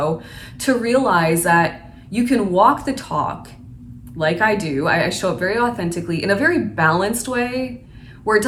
to realize that you can walk the talk like I do. I show up very authentically in a very balanced way, where it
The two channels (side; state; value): both; identical; correlation 1.00